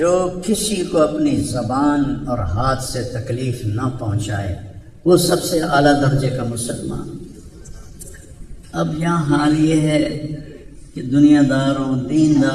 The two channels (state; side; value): identical; both; correlation 1.00